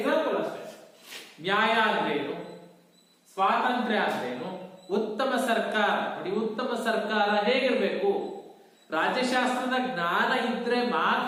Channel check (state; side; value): identical; both; correlation 1.00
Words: ಅಷ್ಟೇ. ನ್ಯಾಯ ಅಂದ್ರೇನು, ಸ್ವಾತಂತ್ರ್ಯ ಅಂದ್ರೇನು, ಉತ್ತಮ ಸರ್ಕಾರ. ನೋಡಿ, ಉತ್ತಮ ಸರ್ಕಾರ ಹೇಗಿರ್ಬೇಕು? ರಾಜ್ಯಶಾಸ್ತ್ರದ ಜ್ಞಾನ ಇದ್ರೆ